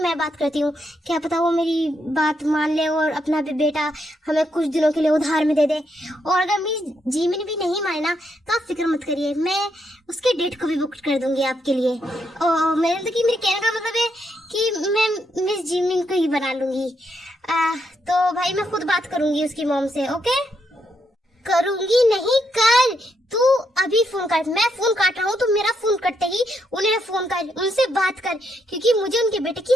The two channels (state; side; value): normal; both; correlation 0.78